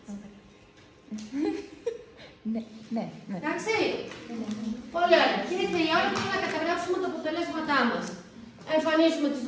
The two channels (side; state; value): both; identical; correlation 1.00